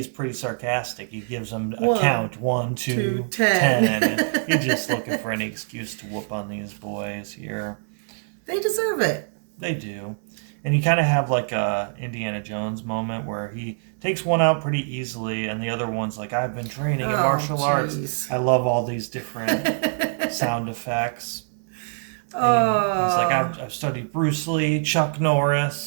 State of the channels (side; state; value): left; silent; 62 dB below the other